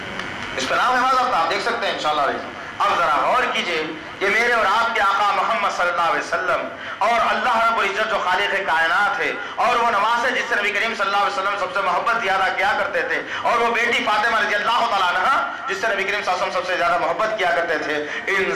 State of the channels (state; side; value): identical; both; correlation 1.00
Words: اس کا نام ہے، آپ دیکھ سکتے ہیں انشاءاللہ۔ اب ذرا غور کیجئے یہ میرے اور آپ کے آقا محمد صلی اللہ علیہ وسلم اور اللہ رب العزت جو خالق کائنات ہے، اور وہ نماز ہے جس سے نبی کریم صلی اللہ علیہ وسلم سب سے محبت زیادہ کیا کرتے تھے، اور وہ بیٹی فاطمہ رضی اللہ تعالیٰ عنہا جس سے نبی کریم صلی اللہ علیہ وسلم سب سے زیادہ محبت کیا کرتے تھے، ان